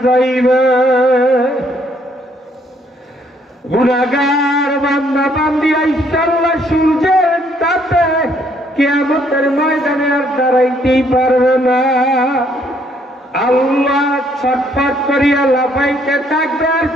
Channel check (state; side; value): normal; both; correlation 0.67